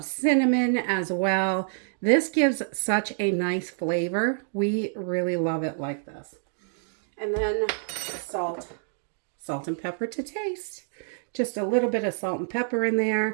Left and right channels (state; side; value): silent; left; digital silence